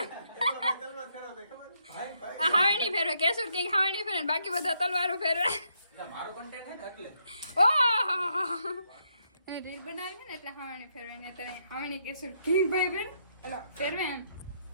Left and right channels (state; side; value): inverted; both; correlation -0.76